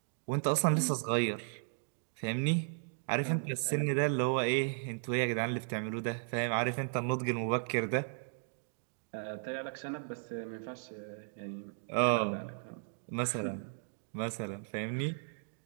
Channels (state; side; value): silent; left; digital silence